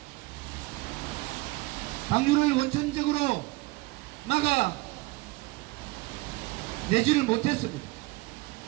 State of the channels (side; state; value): left; quieter; 22.3 dB